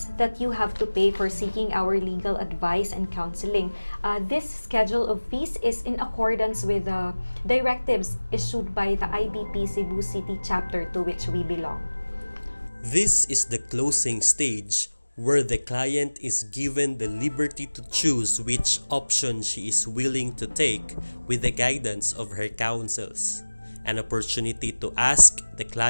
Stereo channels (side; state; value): both; inverted; correlation -1.00